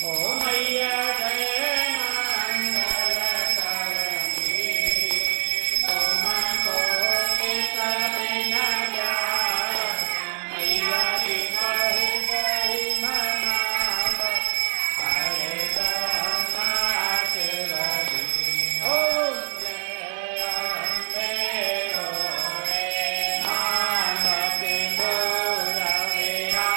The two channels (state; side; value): silent; left; 62 dB below the other